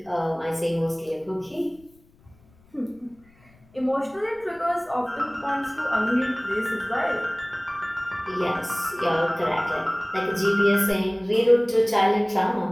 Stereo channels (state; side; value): noise; left; rumble, 30 dB below the sound